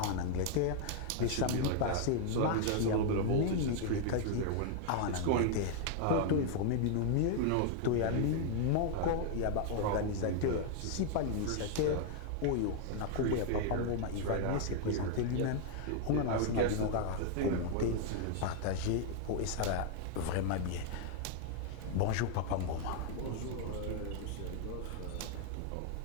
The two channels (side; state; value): both; different; correlation 0.00